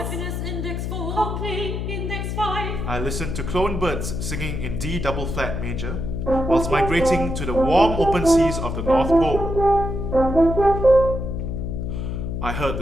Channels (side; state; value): left; noise; hum, 3 dB below the sound